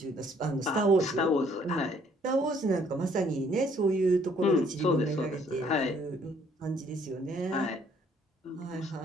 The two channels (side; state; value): both; normal; correlation 0.63